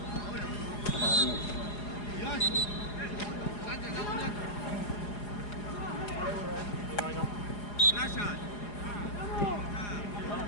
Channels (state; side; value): late; right; 4.8 ms